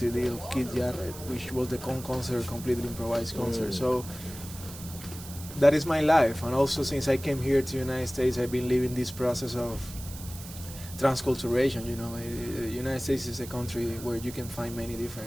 of Kid Jarrett, which was the concert, completely improvised concert. So that is my life. And also since I came here to the United States, I've been living this process of transculturation. The United States is a country where you can find many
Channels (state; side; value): noise; right; hiss, 14 dB below the sound